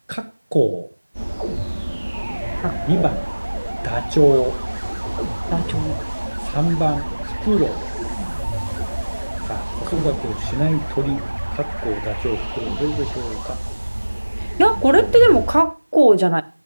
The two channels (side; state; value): both; inverted; correlation -1.00